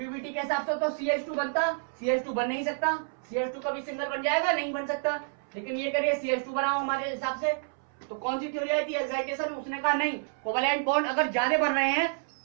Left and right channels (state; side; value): silent; left; 58 dB below the other